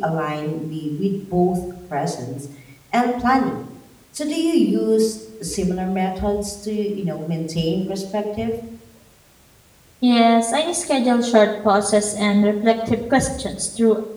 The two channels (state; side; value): identical; both; correlation 1.00